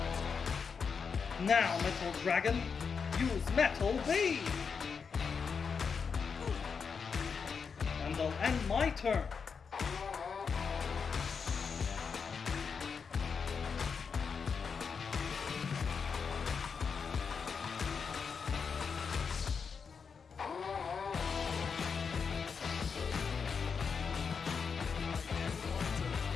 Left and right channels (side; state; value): right; quieter; 5.8 dB